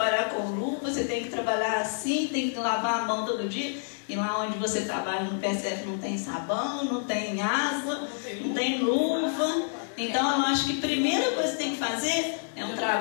com luva, você tem que trabalhar assim, tem que lavar a mão todo dia, e lá onde você trabalha no PSF não tem sabão, não tem água, não tem luva. Então eu acho que a primeira coisa que tem que fazer é um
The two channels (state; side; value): silent; right; digital silence